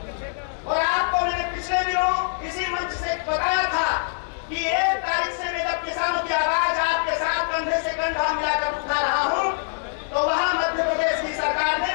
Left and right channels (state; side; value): silent; right; digital silence